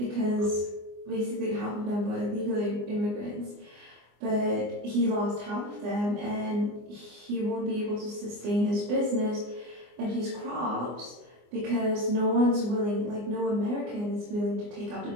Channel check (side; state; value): left; late; 24 ms